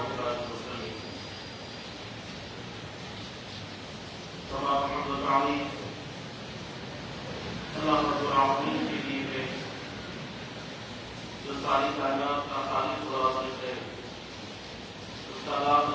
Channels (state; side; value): identical; both; correlation 1.00